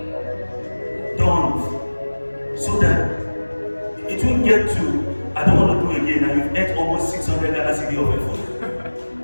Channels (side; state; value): both; inverted; correlation -1.00